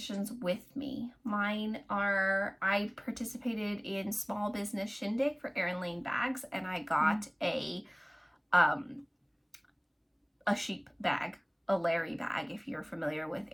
with me. Mine are, I participated in Small Business Shindig for Erin Lane bags, and I got a sheep bag, a Larry bag, if you're familiar with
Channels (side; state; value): both; identical; correlation 1.00